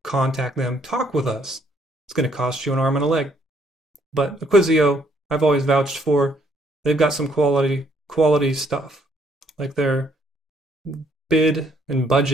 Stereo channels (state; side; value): normal; both; correlation 0.68